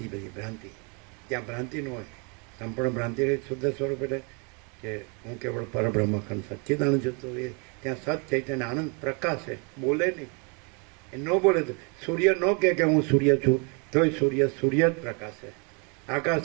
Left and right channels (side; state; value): left; quieter; 34.1 dB